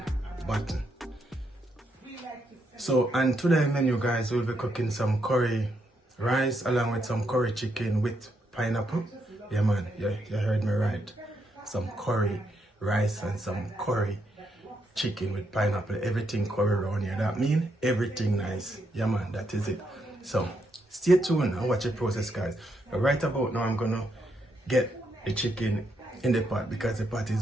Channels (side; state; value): both; normal; correlation 0.78